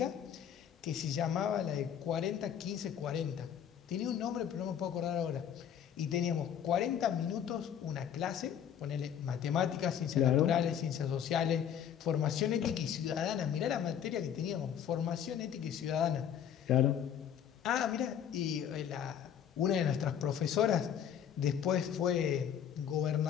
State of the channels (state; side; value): quieter; right; 8.9 dB